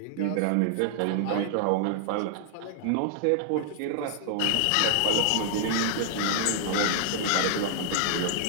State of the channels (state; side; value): different; both; correlation -0.01